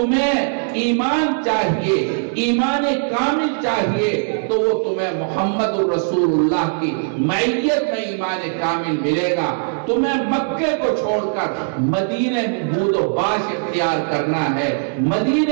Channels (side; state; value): left; silent; digital silence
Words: ایمان چاہیے، ایمان کامل چاہیے، تو وہ تمہیں محمد الرسول اللہ کی معیت میں ایمان کامل ملے گا۔ تمہیں مکے کو چھوڑ کر مدینے میں بود و باش اختیار کرنا ہے،